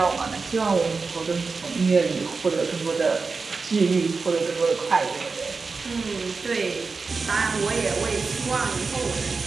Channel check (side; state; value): left; quieter; 4.4 dB